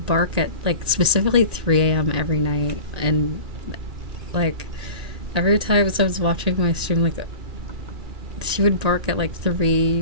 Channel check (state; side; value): late; left; 1.9 ms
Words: bark at like specifically 3 a.m. every night. And like every time I was watching my stream, like she would bark at like 3,